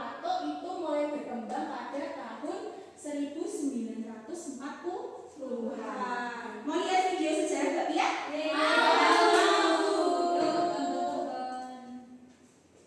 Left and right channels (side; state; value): both; identical; correlation 1.00